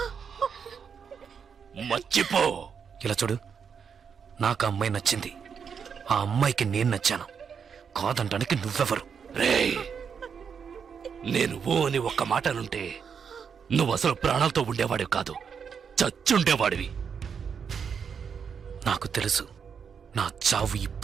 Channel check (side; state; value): left; quieter; 6.7 dB